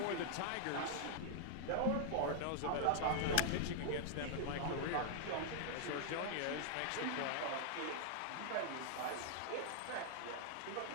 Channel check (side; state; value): both; different; correlation -0.01